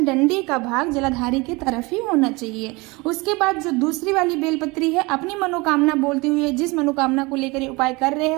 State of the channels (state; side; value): quieter; left; 24.9 dB